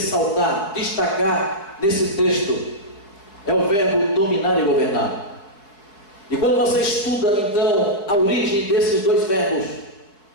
destacar nesse texto, é o verbo dominar e governar. E quando você estuda então a origem desses dois verbos,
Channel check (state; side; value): late; right; 4.8 ms